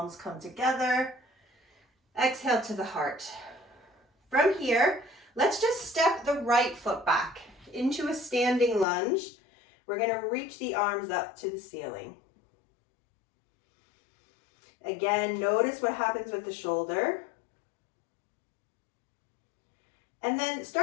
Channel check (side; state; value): right; drops out; at 8.8 s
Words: come together. Exhale to the heart. From here, let's just step the right foot back into a standing lunge. We're going to reach the arms up to the ceiling. Again, notice what happens with the shoulder. And then